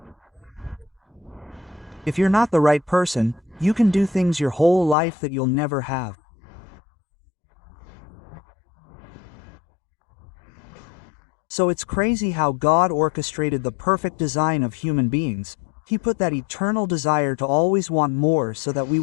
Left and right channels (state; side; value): drops out; right; at 5.0 s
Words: If you're not the right person, you can do things your whole life that you'll never have. So it's crazy how God orchestrated the perfect design of human beings. He put that eternal desire to always want more so that we